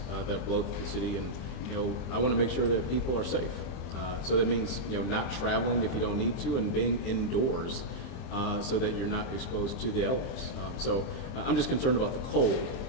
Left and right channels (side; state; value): right; late; 23 ms